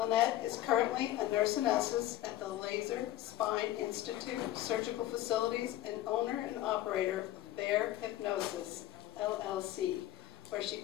is currently a nurse anesthetist at the Laser Spine Institute Surgical Facilities and owner and operator of Bear Hypnosis, LLC, where she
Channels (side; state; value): right; quieter; 14.4 dB